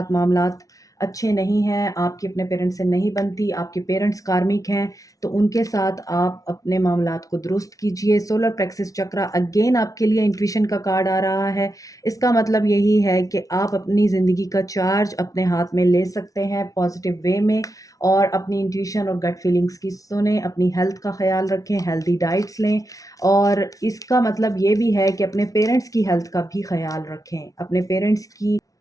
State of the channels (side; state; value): right; late; 0.17 ms